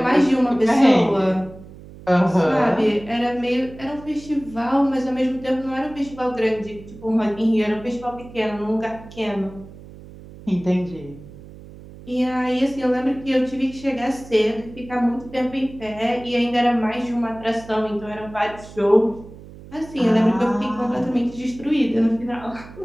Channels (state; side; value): noise; right; hum, 18 dB below the sound